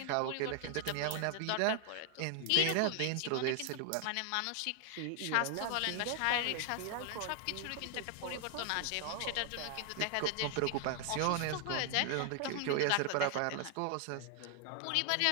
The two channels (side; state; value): both; different; correlation 0.00